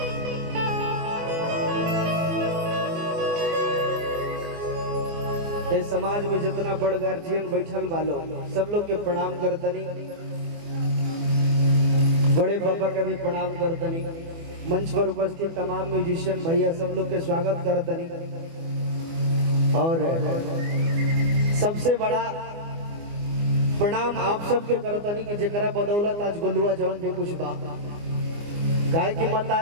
इस समाज में जितना बड़ गार्जियन बैठल वालो सब लोग के प्रणाम करतनी, बड़े पापा का भी प्रणाम करतनी, मंच पर उपस्थित तमाम म्यूजिशियन भैया सब लोग के स्वागत करतनी। और सबसे बड़ा प्रणाम आप सबके करतनी कि जेकरा बदौलत आज गुलुआ जौन भी कुछ बा। गाय की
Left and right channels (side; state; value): left; late; 24 ms